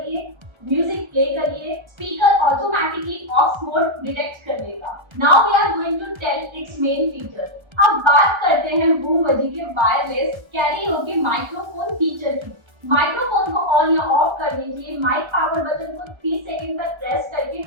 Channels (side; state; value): left; late; 1.3 ms